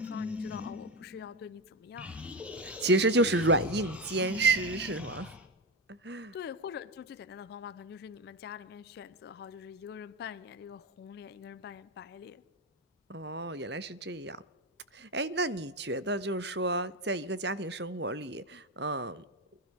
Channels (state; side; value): normal; both; correlation 0.16